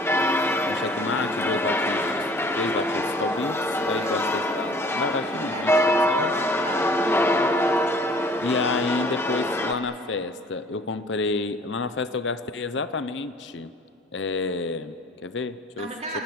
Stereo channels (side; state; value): both; normal; correlation 0.51